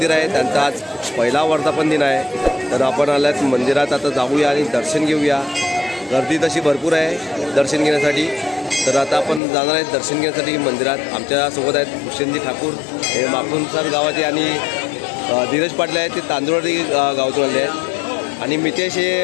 आहे, त्यांचा आज पहिला वर्धापन दिन आहे. तर आपण आले आहेत मंदिरात, आता जाऊया आणि दर्शन घेऊया. गर्दी तशी भरपूर आहे दर्शन घेण्यासाठी. तर आता आपण जाणार आहेत दर्शन घेण्यासाठी मंदिरात. आमच्यासोबत आहेत भूषणजी ठाकूर, हे माकुणसार गावाचे, आणि धीरज पाटील आहेत, ते तांदुळवाडी गावातून आले आहेत, आणि मितेश हे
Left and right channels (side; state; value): right; drops out; at 9.4 s